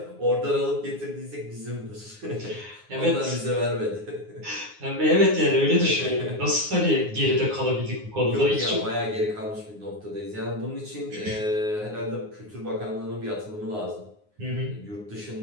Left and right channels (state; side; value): late; left; 9.6 ms